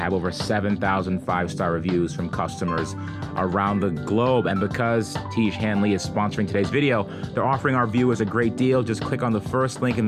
over 7,000 5-star reviews from customers around the globe. And because Tiege Hanley is sponsoring today's video, they're offering our viewers a great deal. Just click on the first link in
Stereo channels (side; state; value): both; identical; correlation 1.00